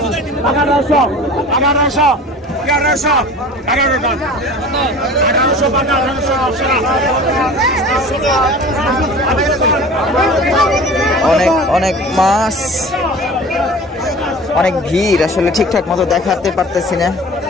অনেক মাছ, অনেক ভিড়। আসলে ঠিকঠাক মতো দেখাতে পারতেছি না,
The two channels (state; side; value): normal; both; correlation 0.40